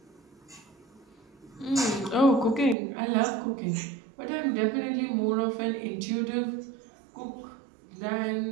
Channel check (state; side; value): drops out; left; at 2.8 s